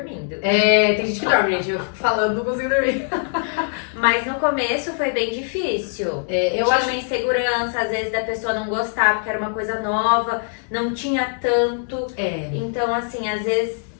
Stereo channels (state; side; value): silent; right; 64 dB below the other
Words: Tem gente que dorme, gente. Eu falando, não consigo dormir. Mas no começo foi bem difícil. Eu tinha acho uma insegurança, às vezes, da pessoa não gostar porque era uma coisa nova, não tinha tanto. Então, assim, às vezes